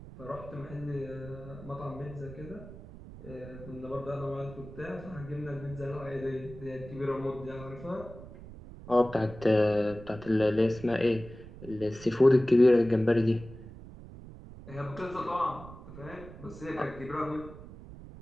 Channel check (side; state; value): right; noise; rumble, 15 dB below the sound